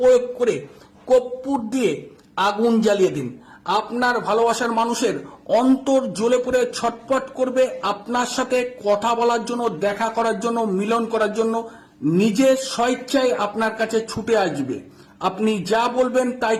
করে কর্পূর দিয়ে আগুন জ্বালিয়ে দিন। আপনার ভালোবাসার মানুষের অন্তর জ্বলে পড়ে ছটফট করবে, আপনার সাথে কথা বলার জন্য, দেখা করার জন্য, মিলন করার জন্য নিজের স্বেচ্ছায় আপনার কাছে ছুটে আসবে। আপনি যা বলবেন তাই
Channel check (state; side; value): identical; both; correlation 1.00